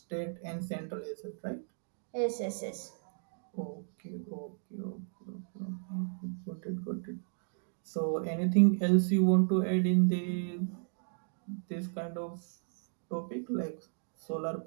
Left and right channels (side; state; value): left; silent; 55 dB below the other